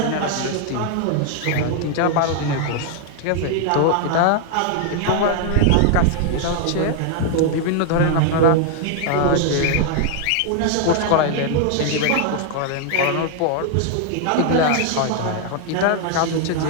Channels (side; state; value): both; different; correlation 0.00